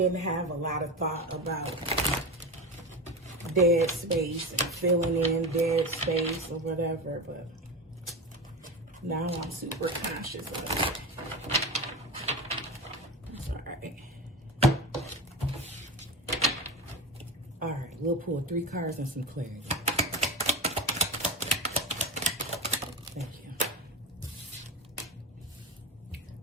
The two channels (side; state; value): both; normal; correlation 0.25